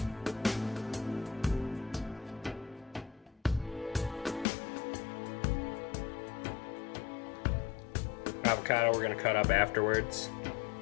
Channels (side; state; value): right; drops out; at 4.5 s